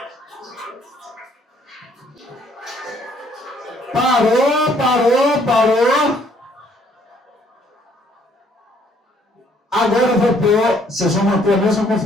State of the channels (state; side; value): normal; both; correlation 0.64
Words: Parou. Agora eu vou pôr, vocês vão manter a mesma